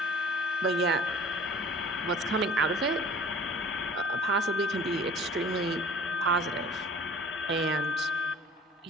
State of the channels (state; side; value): normal; both; correlation 0.48